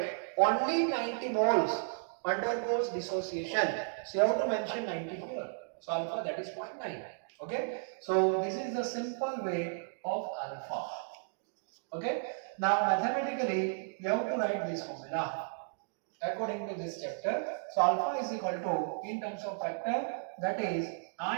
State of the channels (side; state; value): left; silent; digital silence